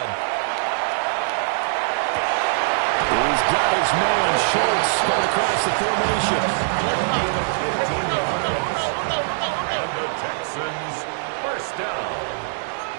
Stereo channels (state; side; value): silent; left; 64 dB below the other